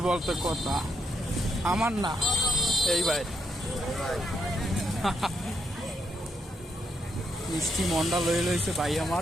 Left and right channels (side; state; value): both; normal; correlation 0.79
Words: বলতে কথা আমার না, এই ভাই মিষ্টি মন্ডা লয়ে লইছে ভাই